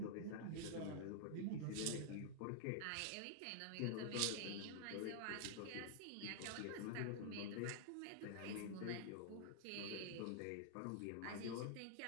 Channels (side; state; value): both; different; correlation -0.01